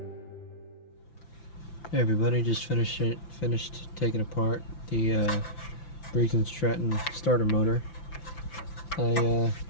Hey everybody, just finished taking apart the Briggs and Stratton starter motor. I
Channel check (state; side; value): late; right; 5.9 ms